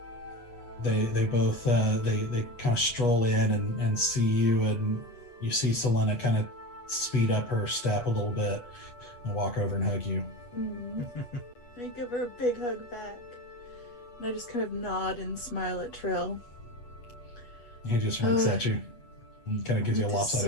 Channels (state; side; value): late; right; 8.3 ms